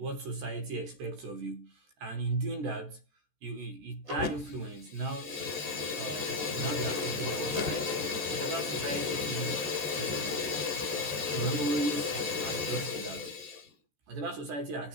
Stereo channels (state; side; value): late; left; 14 ms